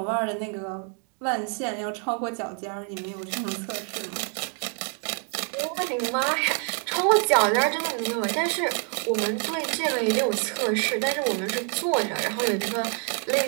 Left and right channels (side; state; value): left; quieter; 39.5 dB